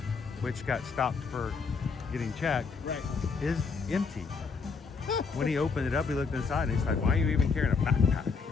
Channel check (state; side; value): quieter; right; 5.0 dB